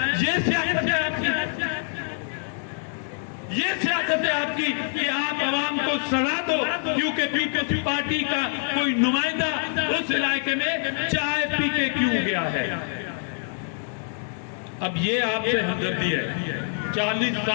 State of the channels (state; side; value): silent; right; 62 dB below the other